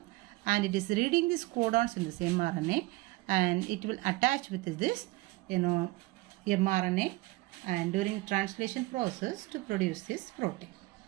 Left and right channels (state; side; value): quieter; left; 20.7 dB